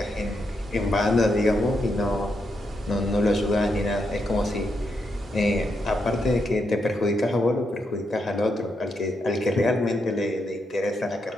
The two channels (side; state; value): both; normal; correlation 0.81